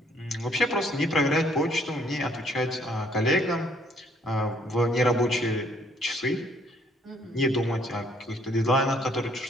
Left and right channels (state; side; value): normal; both; correlation 0.64